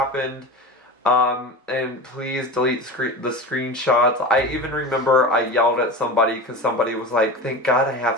And please delete the screenshots. I even remember I yelled at somebody because somebody was like, thank God I have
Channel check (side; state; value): both; normal; correlation 0.28